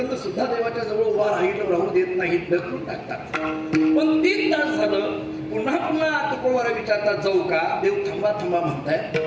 सुद्धा देवाच्या जवळ उभा राहू देत नाहीत, ढकलून टाकतात. पण 3 तास झालं, पुन्हा पुन्हा तुकोबारा विचारतात, जाऊ का? देव थांबा थांबा म्हणताय.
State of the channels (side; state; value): both; identical; correlation 1.00